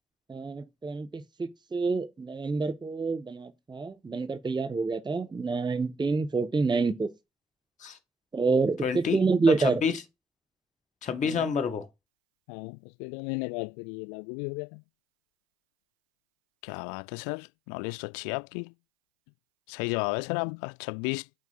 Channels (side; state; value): right; drops out; at 11.9 s